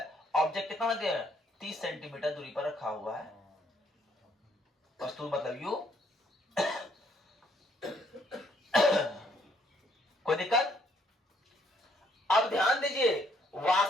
ऑब्जेक्ट कितना रखते हैं, 30 सेंटीमीटर दूरी पर रखा हुआ है, वस्तु मतलब यू। कोई दिक्कत? अब ध्यान दीजिए,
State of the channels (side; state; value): both; normal; correlation 0.68